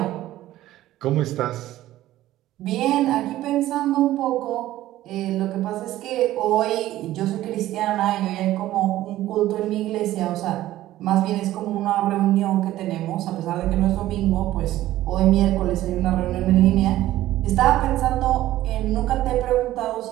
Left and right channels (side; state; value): left; quieter; 14.7 dB